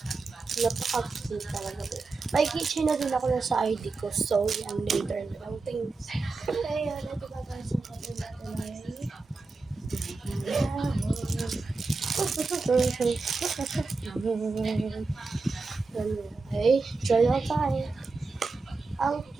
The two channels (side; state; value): left; quieter; 3.9 dB